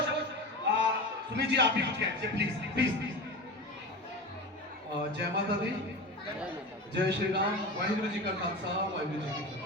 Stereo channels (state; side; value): normal; both; correlation 0.27